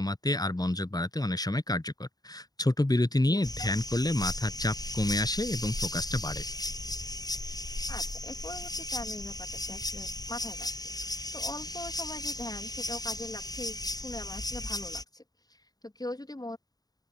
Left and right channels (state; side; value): late; right; 0.19 ms